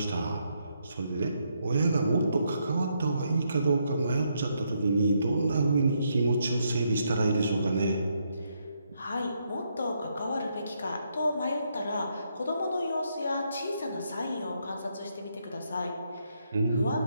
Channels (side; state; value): both; inverted; correlation -0.77